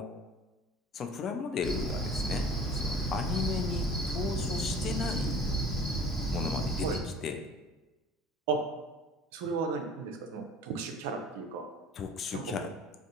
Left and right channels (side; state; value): both; normal; correlation 0.46